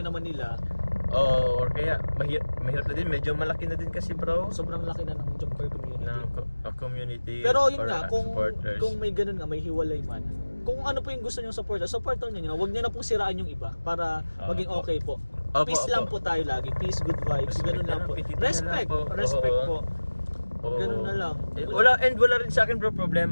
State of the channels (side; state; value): both; inverted; correlation -1.00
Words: nila, or kaya mahirap na din, medyo malaki na din kasi bro sobrang laki na ng Jomcar community. ng community. Pero yun or, nga, supporters. kung may ganun nga, may hiwalay man. Kung ano po yung gusto nyo supporter nyo, huwag nyo na pong siraan yung iba para maging Opo. okay po. Opo, Peace opo. lang po tayo lagi. Peace, good vibes. Respect Ganun na lang lang, po. pititin na Respect. lang po. Respect Oo. po. Oo. Ganun na lang. Wala rin sa akin bro